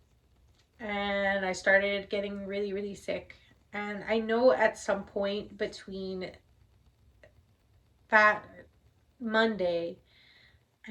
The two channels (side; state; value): both; identical; correlation 1.00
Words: and I started getting really really sick. And I know at some point between that Monday